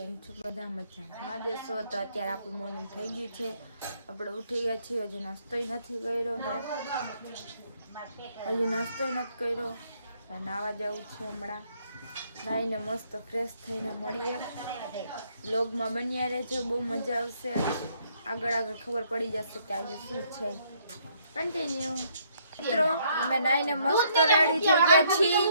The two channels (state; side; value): inverted; both; correlation -0.68